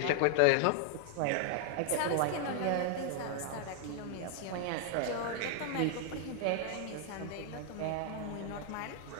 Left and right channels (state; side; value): different; both; correlation 0.00